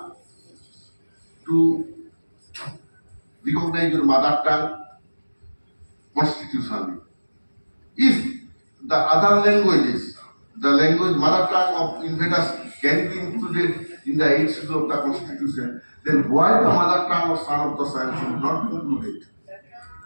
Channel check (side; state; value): both; inverted; correlation -1.00